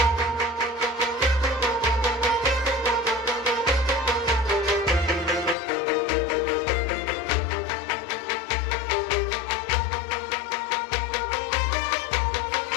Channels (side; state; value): right; drops out; at 5.6 s